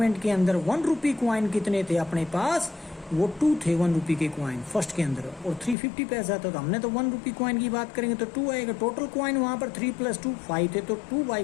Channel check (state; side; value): drops out; right; at 5.8 s